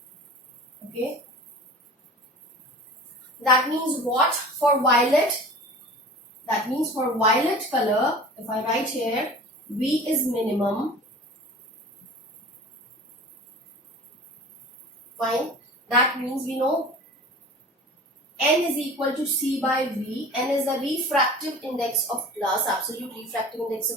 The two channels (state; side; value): normal; both; correlation 0.39